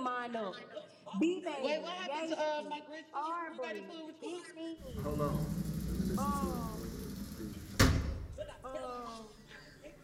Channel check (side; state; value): both; identical; correlation 1.00